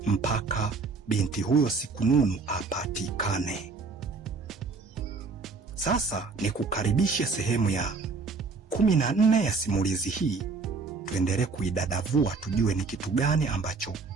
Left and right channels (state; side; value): quieter; left; 4.4 dB